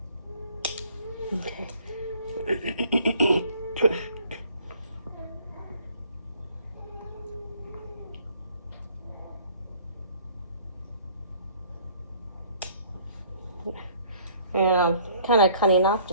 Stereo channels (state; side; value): inverted; both; correlation -0.57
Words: Okay. And I'm kind of cutting off